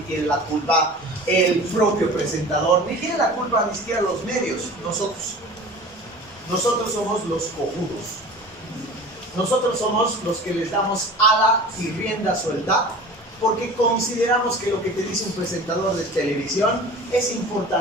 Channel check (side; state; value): both; normal; correlation 0.39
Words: tiene la culpa el propio presentador, ni tiene la culpa ni siquiera los medios, nosotros. Nosotros somos los cojudos. Nosotros somos los que les damos ala y rienda suelta porque consideramos que lo que te dice un presentador de televisión es